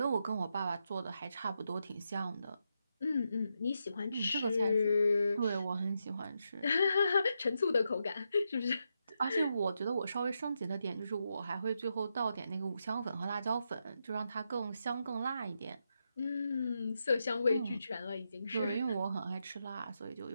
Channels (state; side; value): inverted; both; correlation -0.84